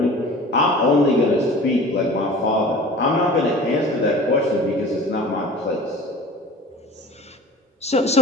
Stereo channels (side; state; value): both; normal; correlation 0.42